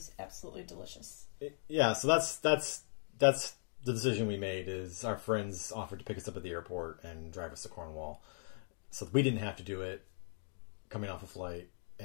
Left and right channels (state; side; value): silent; right; digital silence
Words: absolutely delicious. Yeah, so that's the decision we made. Is our friends offered to pick us up at the airport and drive us to Cornwall, so we didn't have to do it coming off a flight,